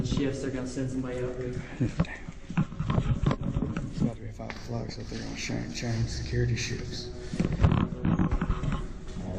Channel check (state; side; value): identical; both; correlation 1.00